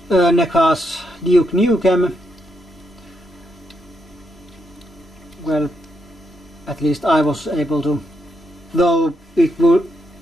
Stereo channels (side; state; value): both; normal; correlation 0.80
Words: NECA's Duke Nukem. Well, at least I was able to, though it will